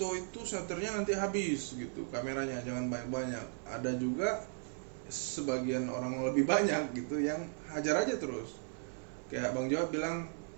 itu shutternya nanti habis gitu, kameranya jangan banyak-banyak. Ada juga sebagian orang lebih banyak gitu yang hajar aja terus. Kayak Bang Jawab bilang,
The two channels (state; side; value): silent; left; 53 dB below the other